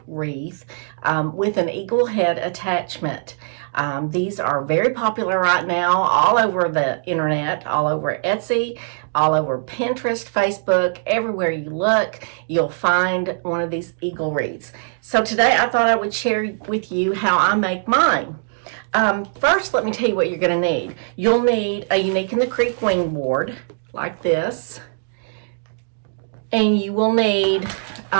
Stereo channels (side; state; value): left; silent; digital silence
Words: wreath with an eagle head attachment. These are very popular right now all over the internet, all over Etsy, all over Pinterest, Facebook. Everywhere you look, you'll find one of these eagle wreaths. So today I thought I would share with you how I make mine. First, let me tell you what you're going to need. You'll need a Unique in the Creek wing board like this. And you will need,